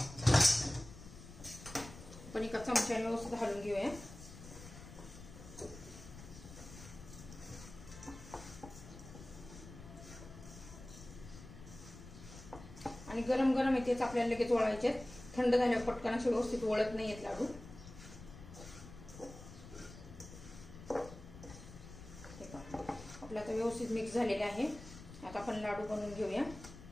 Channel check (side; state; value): left; noise; rumble, 15 dB below the sound